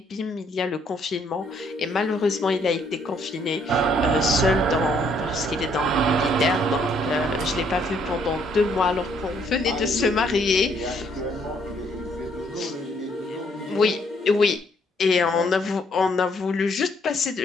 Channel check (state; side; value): normal; both; correlation 0.68